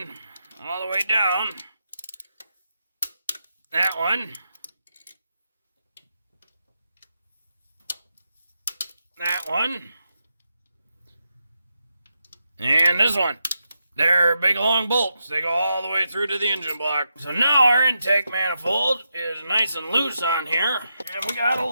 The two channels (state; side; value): inverted; both; correlation -0.86